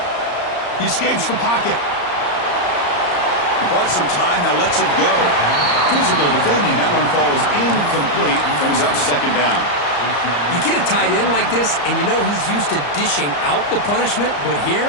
He escapes the pocket. He bought some time, now lets it go. Physical defending, that one falls incomplete, brings up second down. You get a tight end like this, and you know he's used to dishing out the punishment, but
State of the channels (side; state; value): right; late; 34 ms